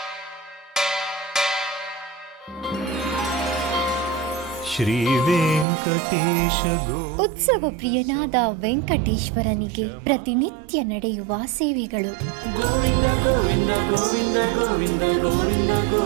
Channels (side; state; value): left; drops out; at 5.7 s